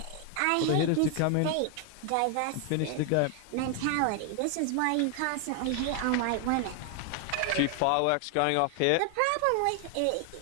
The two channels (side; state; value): both; different; correlation 0.00